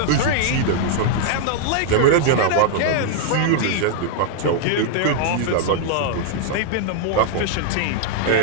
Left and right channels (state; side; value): different; both; correlation -0.01